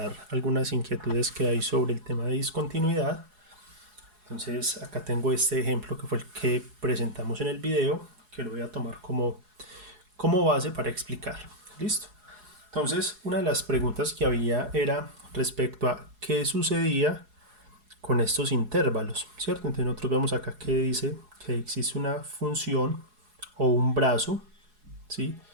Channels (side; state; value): left; late; 4.7 ms